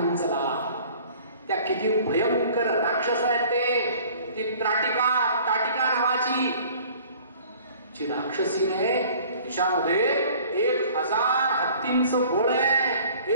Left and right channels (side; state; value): both; inverted; correlation -0.50